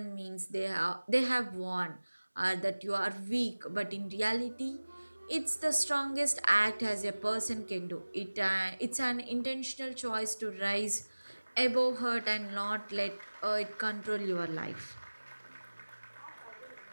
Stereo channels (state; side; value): inverted; both; correlation -1.00